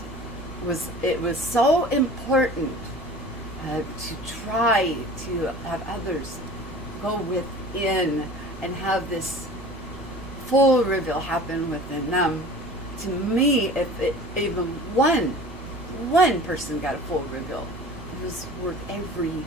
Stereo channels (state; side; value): normal; both; correlation 0.41